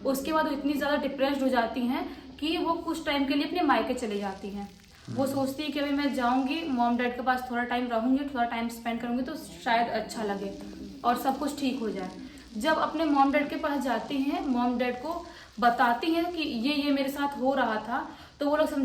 उसके बाद वो इतनी ज़्यादा डिप्रेस्ड हो जाती हैं कि वो कुछ टाइम के लिए अपने मायके चले जाती हैं। वो सोचती है कि अभी मैं जाऊंगी मॉम डैड के पास, थोड़ा टाइम रहूंगी, थोड़ा टाइम स्पेंड करूंगी तो शायद अच्छा लगे और सब कुछ ठीक हो जाए। जब अपने मॉम डैड के पास जाती हैं, मॉम डैड को बताती हैं कि ये मेरे साथ हो रहा था, तो वो लोग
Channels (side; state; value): both; identical; correlation 1.00